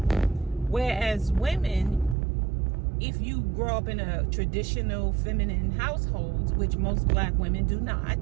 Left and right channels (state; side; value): drops out; left; at 2.1 s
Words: Whereas women, if you grow up in a traditional feminine household, which most black women do not,